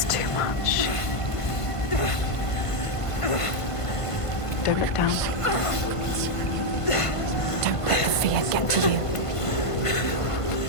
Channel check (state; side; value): late; right; 1.5 ms